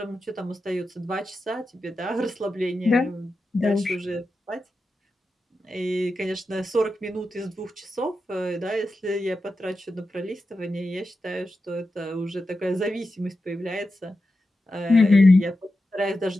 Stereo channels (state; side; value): normal; both; correlation 0.90